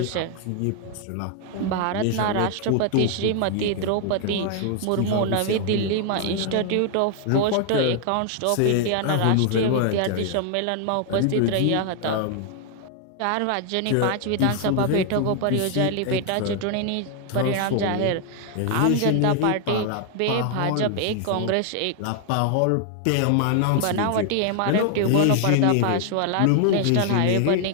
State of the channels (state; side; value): different; both; correlation 0.00